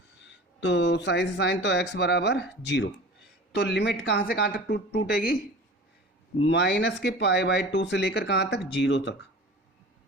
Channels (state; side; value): normal; both; correlation 0.39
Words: तो साइन से साइन, तो x बराबर 0। तो लिमिट कहाँ से कहाँ तक टूटेगी, माइनस के पाई बाई 2 से लेकर कहाँ तक, 0 तक,